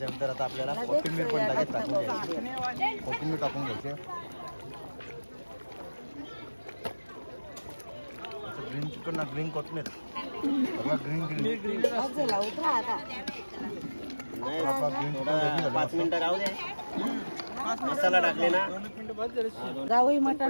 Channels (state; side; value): inverted; both; correlation -1.00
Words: आता आपल्याला कोथिंबीर पण लगेच टाकून घ्यायची. कोथिंबीर टाकून घ्यायची. ग्रीन चिकन ना ग्रीन कोथिंबीर. ग्रीन ग्रीन झाला उतरा आता. ग्रीन चिकन 5 मिनिटं राहू दे. मसाला टाकले ना. गावई